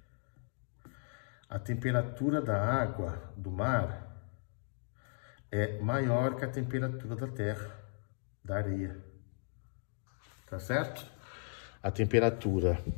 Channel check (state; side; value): silent; right; digital silence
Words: a temperatura da água do mar é maior que a temperatura da terra, da areia. Tá certo? A temperatura